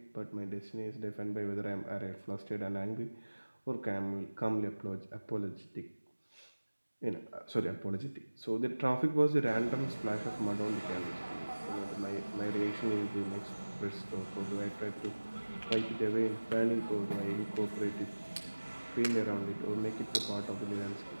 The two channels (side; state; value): both; inverted; correlation -1.00